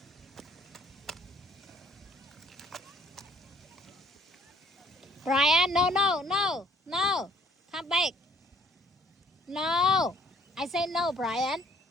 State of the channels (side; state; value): both; normal; correlation 0.60